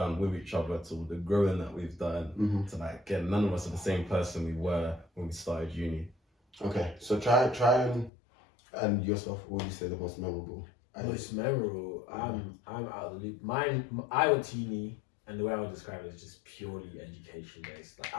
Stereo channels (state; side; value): drops out; right; at 8.1 s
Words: with each other to the growing that we've done to like again, none of us are the same person we were when we started uni. Okay. So try and yourself, what would you say the most memorable? Most memorable. I'm out of the loop. Mine. I went to uni, and the way I would describe it is just purely education based. Like